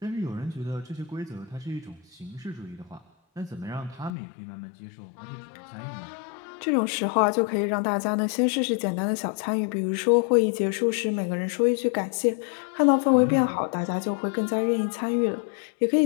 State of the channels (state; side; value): drops out; right; at 4.1 s